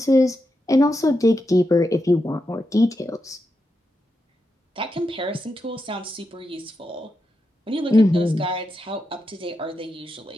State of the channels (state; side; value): normal; both; correlation 0.86